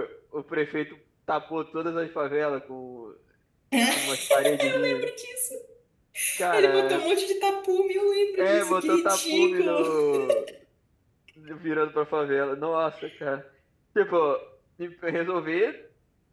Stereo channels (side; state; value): both; identical; correlation 1.00